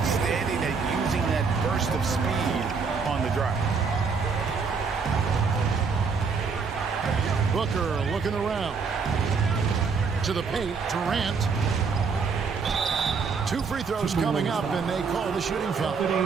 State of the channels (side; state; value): left; quieter; 5.3 dB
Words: at using that burst of speed on the drive. Booker looking around. To the paint, Durant. 2 free throws coming up, and they call the shooting foul.